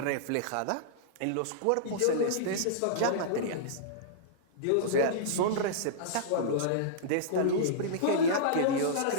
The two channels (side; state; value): both; different; correlation -0.03